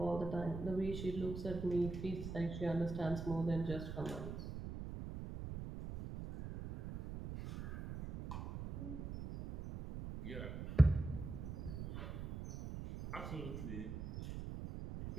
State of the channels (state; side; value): noise; right; rumble, 7 dB below the sound